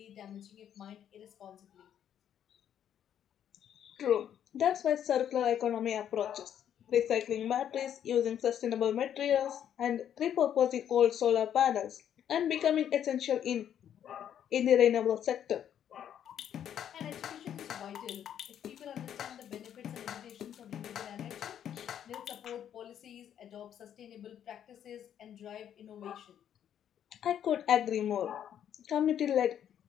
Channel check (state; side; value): quieter; right; 9.7 dB